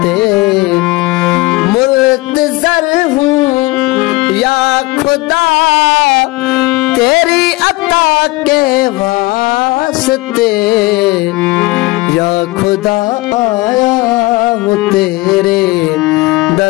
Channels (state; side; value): quieter; right; 21.6 dB